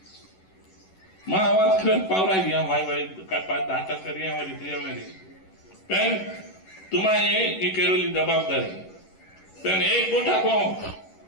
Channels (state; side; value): late; right; 11 ms